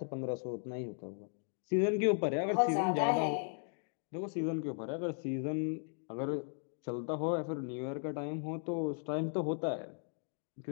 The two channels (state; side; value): silent; right; 53 dB below the other